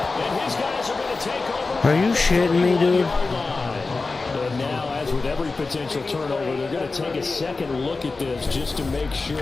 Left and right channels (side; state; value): right; quieter; 3.8 dB